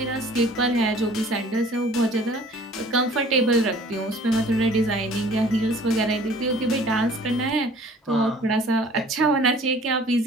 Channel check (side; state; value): both; normal; correlation 0.51